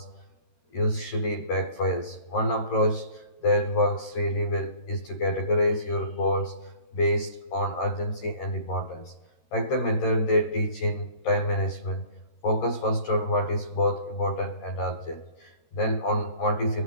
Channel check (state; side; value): late; right; 13 ms